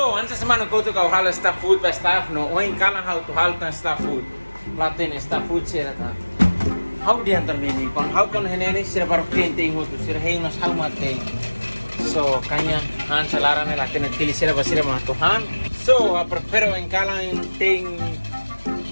antes semana kau tu kau hal staff food ba staff no oin kalang how to hal tan staff food. Laten staff food sira ta. How di antar mini kon how kon hene sira baru painting ho tu sira hengas how mate. So kanya han salarane laten tili sira ba sira ma to han. So prefero en kalang ting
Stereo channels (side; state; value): both; inverted; correlation -1.00